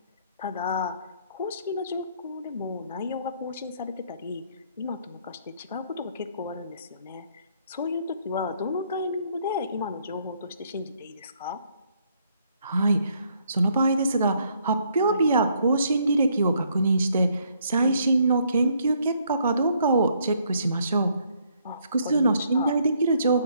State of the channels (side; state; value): both; inverted; correlation -0.69